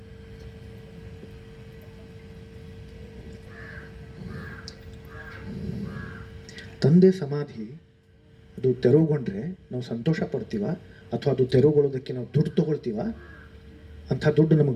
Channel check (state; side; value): identical; both; correlation 1.00